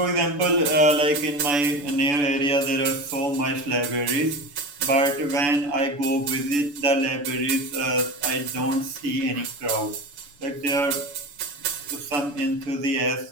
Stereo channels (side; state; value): left; late; 6.9 ms